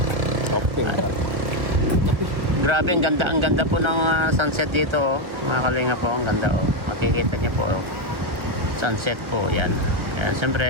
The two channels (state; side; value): late; left; 1.3 ms